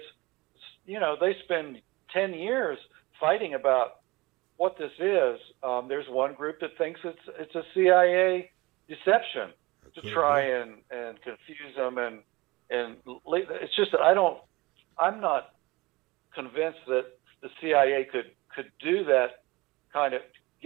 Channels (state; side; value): quieter; left; 22.4 dB